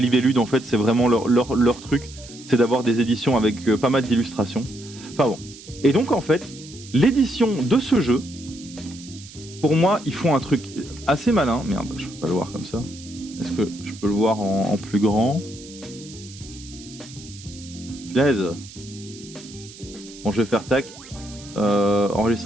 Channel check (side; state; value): right; noise; hiss, 18 dB below the sound